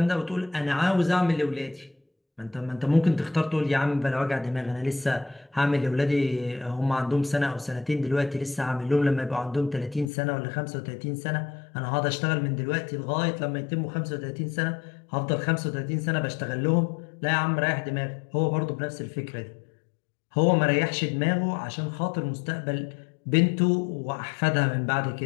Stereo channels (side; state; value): right; drops out; at 10.1 s